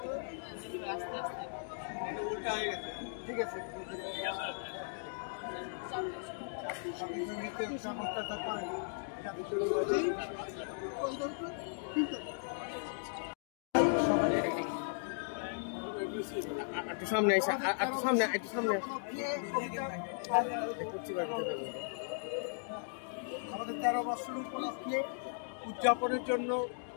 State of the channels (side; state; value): right; silent; digital silence